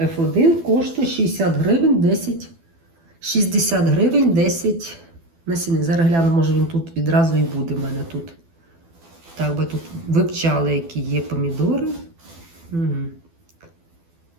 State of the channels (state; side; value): late; left; 12 ms